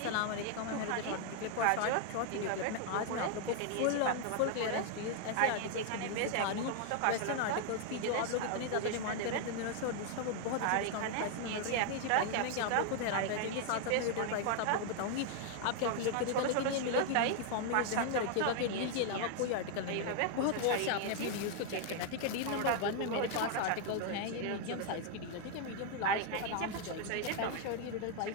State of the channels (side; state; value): both; different; correlation 0.00